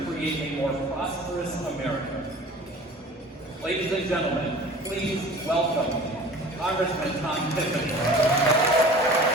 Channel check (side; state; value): both; normal; correlation 0.43